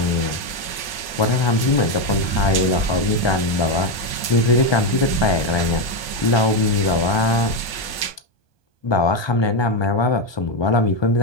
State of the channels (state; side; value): late; right; 1.2 ms